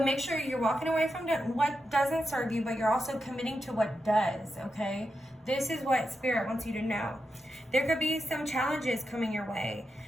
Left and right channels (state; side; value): normal; both; correlation 0.87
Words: make sure you're walking away from what doesn't serve you, but you're also committing to what does, okay? This is what Spirit wants you to know. There could be some challenges coming your way,